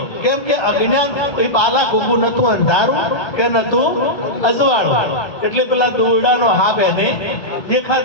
કેમ કે અજ્ઞાન એ બાલા ખોખું નતું, અંધારું કે નતું અજવાળું, એટલે પેલા દોરડાનો હાફ એને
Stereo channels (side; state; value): right; late; 1.3 ms